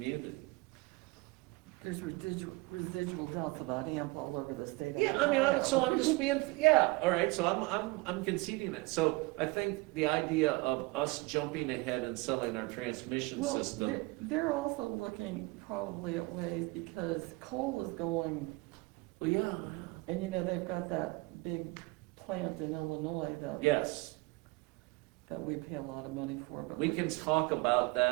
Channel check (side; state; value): left; quieter; 23.9 dB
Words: There's residual doubts about AMP all over the state of Yeah, Ohio. so I'm just being, yeah, all right, so I'm conceding it. So I think the idea of us jumping ahead and selling our transmission Well, system, they're also looking probably at ways, because coal is going, well, yeah, and they've got that big plant in Illinois yes. that we pay a lot of money for, but. We can talk about